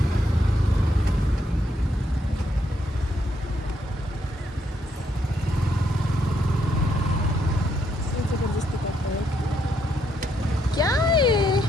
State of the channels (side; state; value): both; normal; correlation 0.75